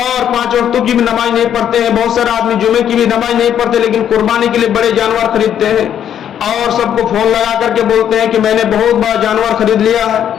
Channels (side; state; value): right; quieter; 9.7 dB